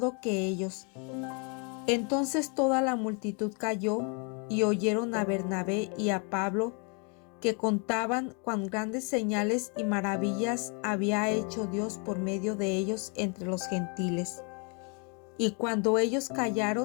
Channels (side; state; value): right; quieter; 36.0 dB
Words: que ellos. Entonces toda la multitud calló, y oyeron a Bernabé y a Pablo, que contaban cuán grandes señales y maravillas había hecho Dios por medio de ellos entre los gentiles. Y cuando ellos